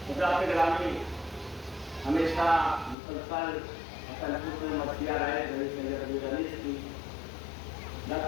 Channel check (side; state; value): right; drops out; at 3.0 s